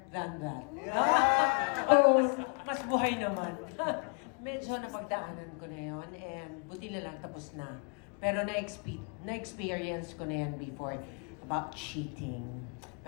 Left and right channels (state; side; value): quieter; right; 37.5 dB